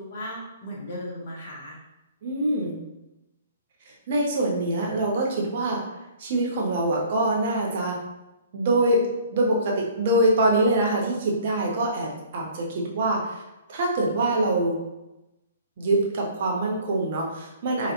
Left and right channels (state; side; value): inverted; both; correlation -0.53